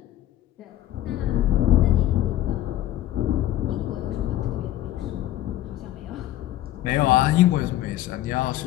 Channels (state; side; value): quieter; right; 13.6 dB